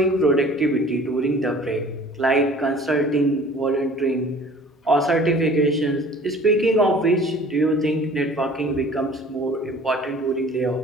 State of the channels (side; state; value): both; normal; correlation 0.48